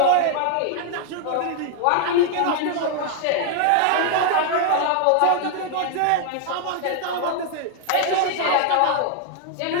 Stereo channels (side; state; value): both; different; correlation 0.00